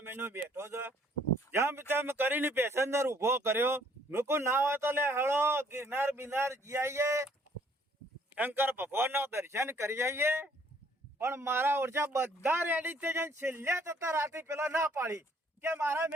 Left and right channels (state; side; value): normal; both; correlation 0.62